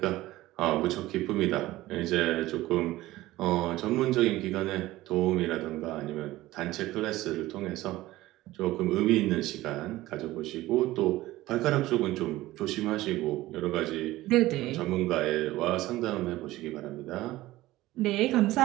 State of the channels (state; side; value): quieter; left; 17.1 dB